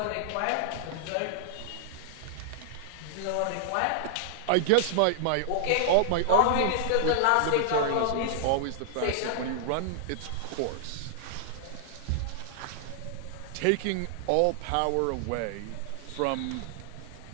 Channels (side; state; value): both; different; correlation -0.01